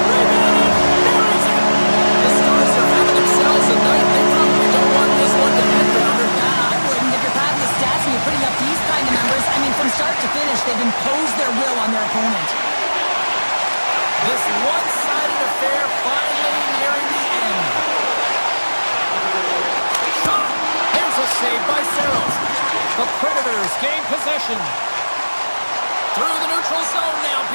Bruins gain possession. Through the neutral zone now,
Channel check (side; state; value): both; inverted; correlation -1.00